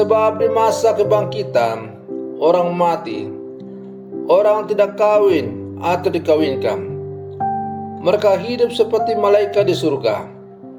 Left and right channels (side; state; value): both; identical; correlation 1.00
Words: di masa kebangkitan, orang mati, orang tidak kawin atau dikawinkan, mereka hidup seperti malaikat di surga.